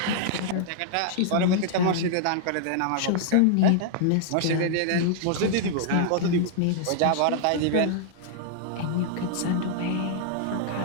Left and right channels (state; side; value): different; both; correlation -0.01